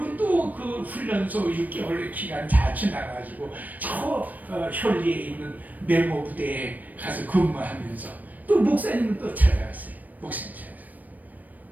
또 그 훈련소 6개월의 기간 다 지나가지고 저 현리에 있는 메모 부대에 가서 근무하면서 또 목사님을 또 찾아갔어요. 목사님 찾아갔어요.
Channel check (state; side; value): late; left; 0.082 ms